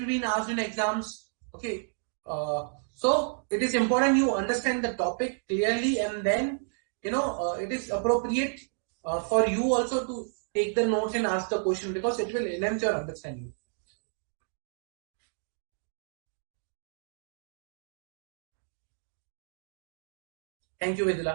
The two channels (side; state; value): left; silent; digital silence